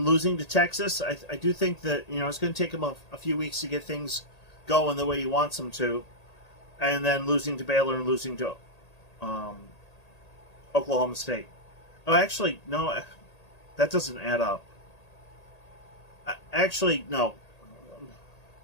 losing to Texas. I do think that, it's going to take him a few weeks to get things going the way he wants them to. And then losing to Baylor and losing to Oklahoma State. Oh, actually, no, that doesn't add up. Actually, no.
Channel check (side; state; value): right; late; 1.8 ms